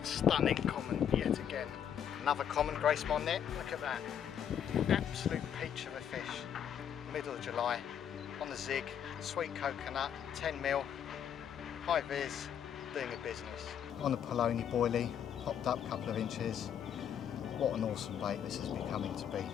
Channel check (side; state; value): right; quieter; 8.9 dB